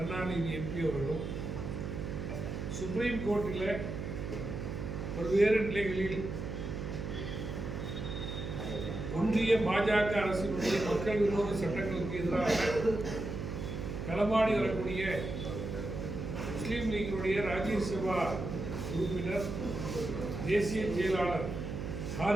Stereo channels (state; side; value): noise; right; hum, 5 dB below the sound